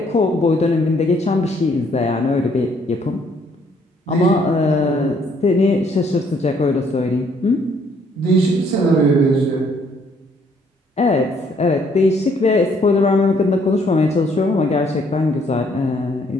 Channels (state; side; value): normal; both; correlation 0.66